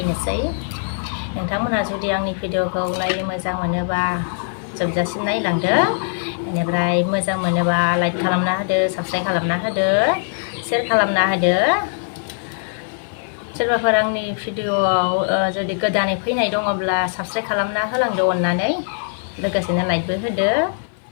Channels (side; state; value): right; silent; 55 dB below the other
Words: नोंथांमोनहा जुदि आंनि भिडिअखौ नायनो मोजां मोनोबा जोबजासिम नायलांदो। बेनिफ्राय मोजां मोनोबा लाइक खालामना होदो, साबस्क्राइब खालामना होदो, शेयार खालामना होदो। सोरबाफोर आंनि भिडिअआव जुदि गोदानै फैनाय दङब्ला साबस्क्राइब खालामना होलांदो अननानै, लोगोसेनो लाइकबो होदो।